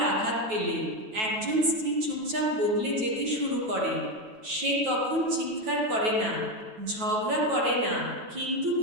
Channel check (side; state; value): left; late; 9.2 ms